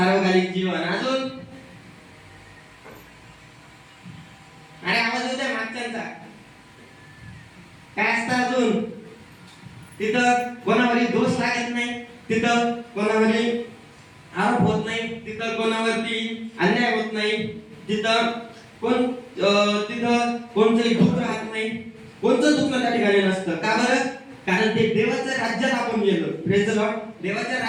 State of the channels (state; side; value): identical; both; correlation 1.00